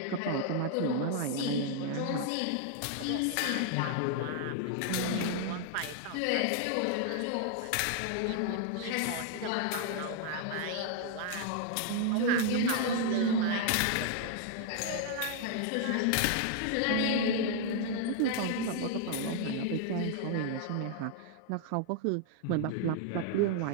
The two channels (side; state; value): both; different; correlation 0.00